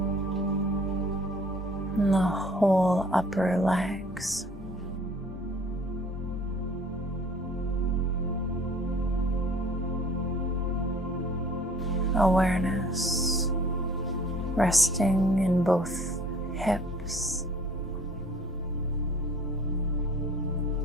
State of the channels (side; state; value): both; normal; correlation 0.52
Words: and the whole upper legs. Awareness resting in both hips